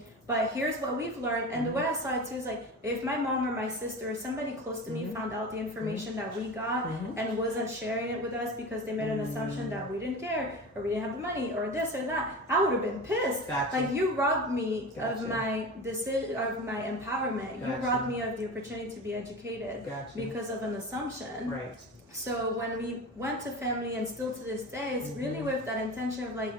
But here's what we've learned, and the way I saw it too is like if my mom or my sister or somebody close to me found out the information that we got and wasn't sharing it with us because they made an assumption that we didn't care or we didn't have the money or this or that, I would have been pissed. Gotcha. Like you robbed me Gotcha. of my decision, of my empowerment. Gotcha. You robbed me of the opportunity to be educated Gotcha. because of an assumption. Right. So when we went to family, and still to this day, it's really with that intention of like,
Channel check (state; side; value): normal; both; correlation 0.30